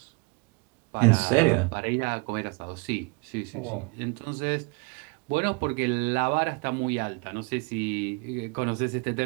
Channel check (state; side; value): quieter; left; 30.5 dB